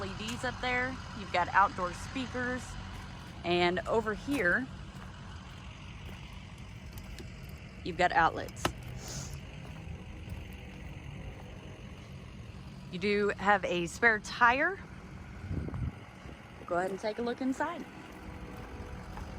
up there. You've got outdoor speakers, and over here you've got outlets. You do have a spare tire. Go ahead and take a look inside.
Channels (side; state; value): both; identical; correlation 1.00